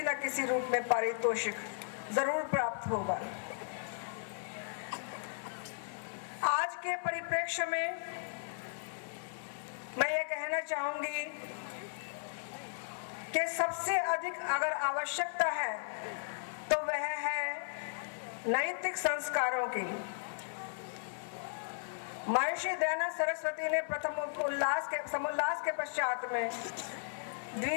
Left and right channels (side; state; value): right; silent; 54 dB below the other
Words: न किसी रूप में पारितोषिक जरूर प्राप्त होगा। आज के परिप्रेक्ष्य में मैं ये कहना चाहूंगी कि सबसे अधिक अगर आवश्यकता है तो वह है नैतिक संस्कारों की। महर्षि दयानंद सरस्वती ने प्रथम समोल्लास के पश्चात में